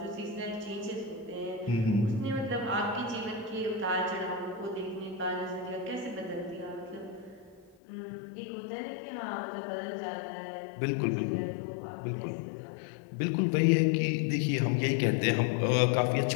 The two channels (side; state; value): right; drops out; at 7.8 s